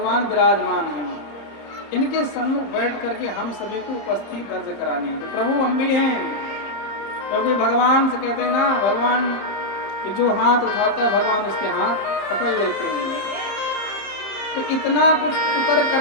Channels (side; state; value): right; late; 30 ms